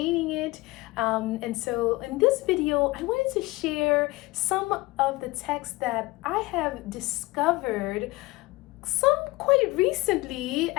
it. And so in this video, I wanted to share some of the texts that I have discovered some quite recently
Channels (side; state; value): right; quieter; 21.3 dB